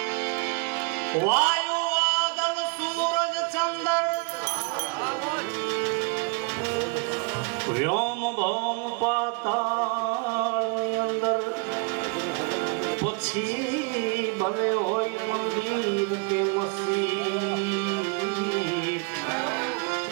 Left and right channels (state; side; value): quieter; left; 33.5 dB